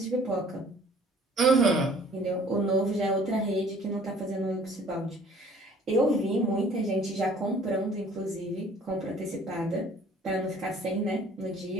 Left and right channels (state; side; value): normal; both; correlation 0.54